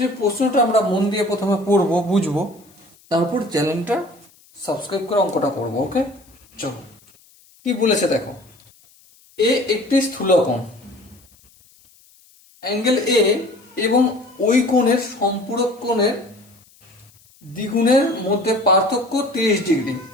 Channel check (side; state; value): left; noise; hiss, 29 dB below the sound